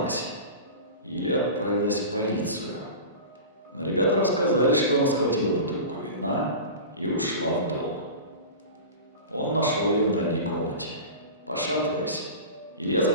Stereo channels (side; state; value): both; inverted; correlation -0.32